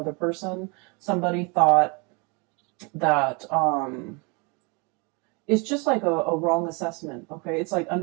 person. Somebody thought that it's just like a wrong assessment. Okay. It's like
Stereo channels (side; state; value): left; quieter; 31.2 dB